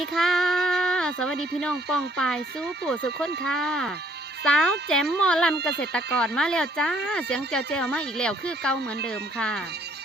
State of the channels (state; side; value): normal; both; correlation 0.63